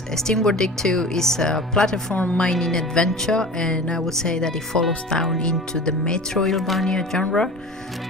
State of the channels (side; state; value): both; normal; correlation 0.36